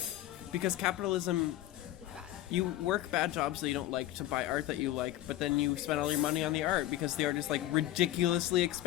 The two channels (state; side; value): quieter; right; 14.5 dB